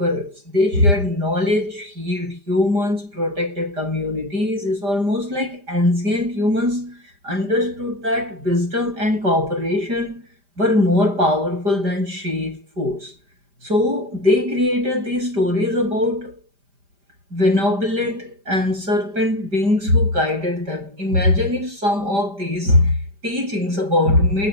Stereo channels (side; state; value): left; late; 5.0 ms